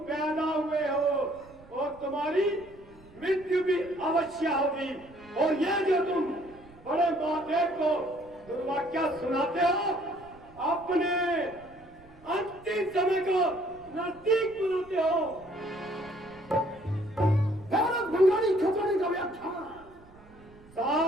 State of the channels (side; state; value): right; noise; rumble, 24 dB below the sound